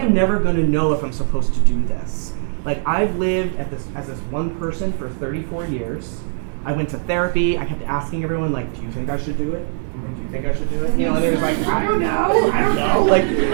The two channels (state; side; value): silent; left; digital silence